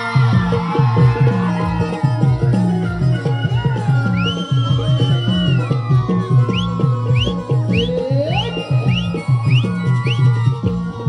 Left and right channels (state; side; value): identical; both; correlation 1.00